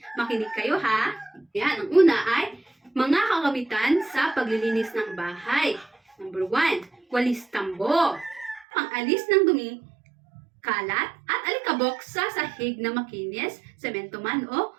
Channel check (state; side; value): drops out; left; at 8.7 s